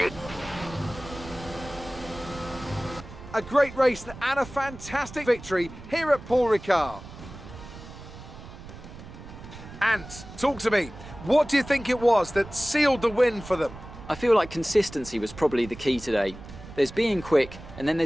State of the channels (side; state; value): right; noise; rumble, 15 dB below the sound